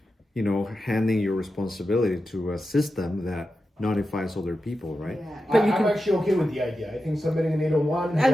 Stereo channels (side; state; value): both; normal; correlation 0.90